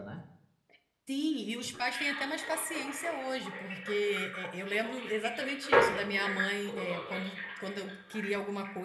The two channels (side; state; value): both; identical; correlation 1.00